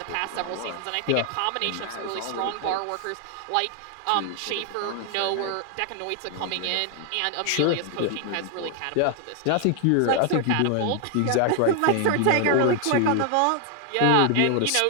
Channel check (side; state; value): both; different; correlation 0.00